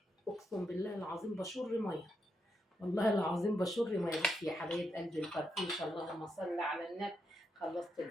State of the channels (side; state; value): both; normal; correlation 0.82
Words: اقسم بالله العظيم بشر ميه والله العظيم بشر ميه. بصي يا حبايب قلبي الفرفوشه اللهم صل على النبي. خلصت